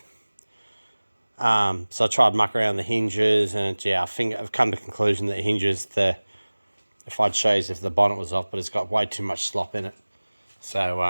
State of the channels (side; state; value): both; inverted; correlation -1.00